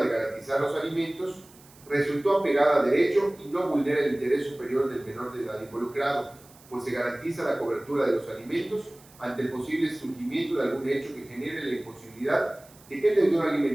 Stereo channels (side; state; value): right; noise; hiss, 25 dB below the sound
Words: garantizar los alimentos, resultó apegada a derecho y no vulnera el interés superior del menor de edad involucrado, pues se garantiza la cobertura de los alimentos ante el posible surgimiento de algún hecho que genere la imposibilidad de que el deudor